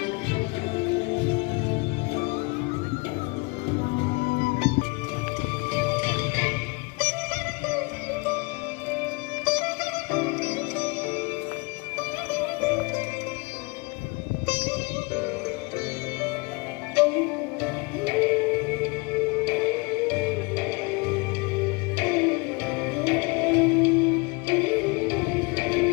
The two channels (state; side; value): quieter; right; 27.5 dB